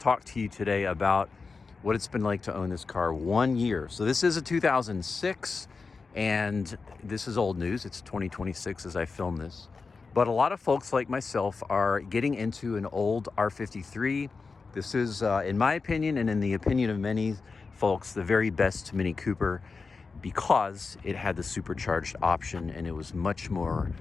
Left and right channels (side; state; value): right; quieter; 4.5 dB